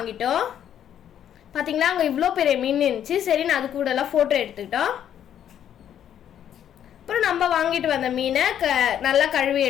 பாத்தீங்களா அங்க இவ்ளோ பெரிய மீன் இருந்துச்சு. சரி நான் அது கூட எல்லாம் போட்டோ எடுத்துக்கிட்டோம். அப்புறம் நம்ம வாங்கிட்டு வந்த மீனை நல்லா கழுவி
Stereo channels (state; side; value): quieter; right; 10.0 dB